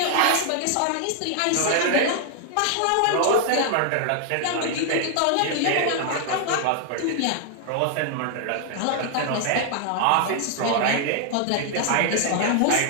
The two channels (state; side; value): different; both; correlation 0.00